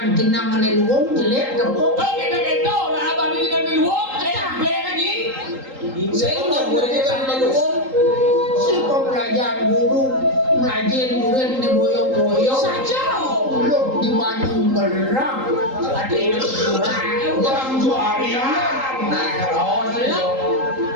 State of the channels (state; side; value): late; left; 3.8 ms